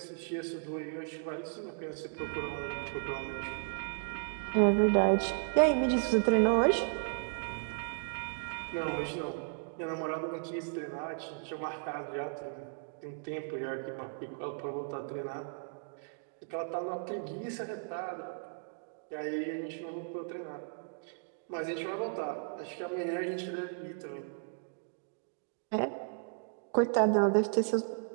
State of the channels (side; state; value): left; silent; digital silence